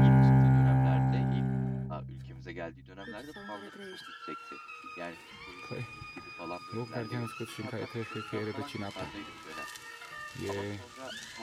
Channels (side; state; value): both; identical; correlation 1.00